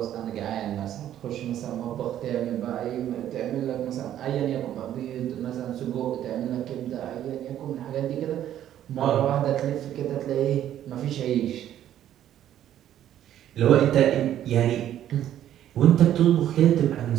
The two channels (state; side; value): quieter; left; 11.4 dB